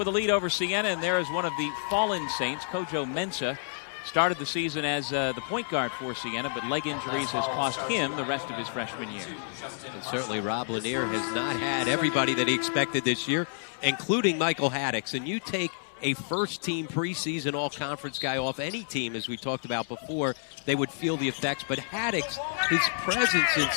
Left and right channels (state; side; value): silent; right; 59 dB below the other